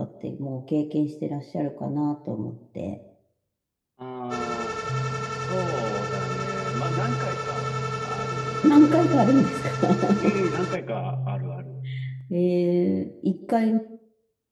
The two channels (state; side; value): identical; both; correlation 1.00